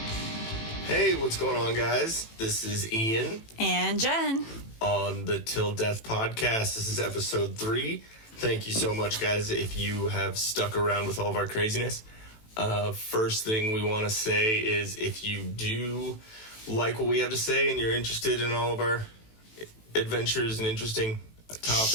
Hey, what's going on, guys? This is Ian. And Jen. On the Till Death Podcast. This is episode 3. Thank you so much, guys, if you have stuck around with all of our craziness. First thing we want to say is if you do like what we have to say and you're interested in all of our adventures and interesting topics.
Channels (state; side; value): late; right; 18 ms